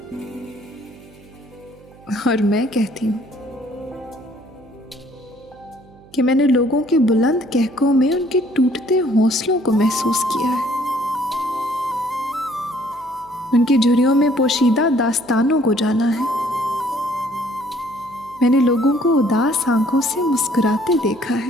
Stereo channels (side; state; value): right; noise; hum, 25 dB below the sound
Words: और मैं कहती हूँ कि मैंने लोगों के बुलंद कहकों में उनके टूटते हौसलों को महसूस किया है, उनकी झुर्रियों में पोशीदा दास्तानों को जाना है। मैंने लोगों को उदास आंखों से मुस्कुराते देखा